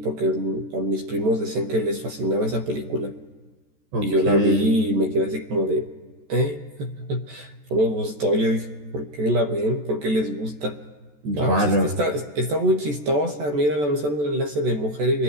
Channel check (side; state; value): left; late; 14 ms